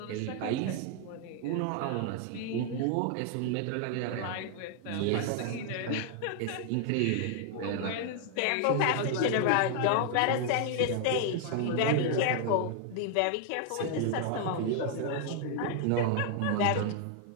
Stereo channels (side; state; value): both; different; correlation 0.00